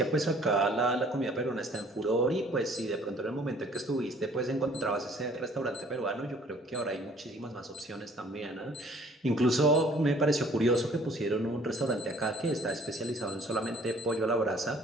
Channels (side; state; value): both; normal; correlation 0.56